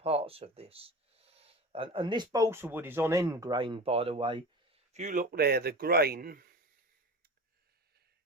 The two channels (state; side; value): normal; both; correlation 0.33